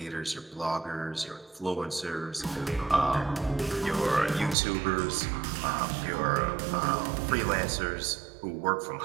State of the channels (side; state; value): left; drops out; at 4.5 s